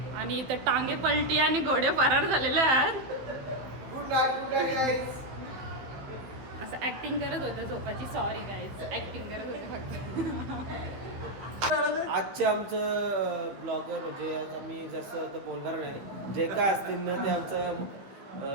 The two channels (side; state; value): left; late; 15 ms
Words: आणि इथे टांगे पलटी आणि घोडे फरार झालेले आहेत. असं ऍक्टिंग करत होतं झोपाची. सॉरी गाईज, ऍक्टिंग करत होते फक्त. आजचे आमचं ब्लॉगर म्हणजे आज आम्ही जसं तर बोलणार नाही, जे काय असतील ना ते आमचं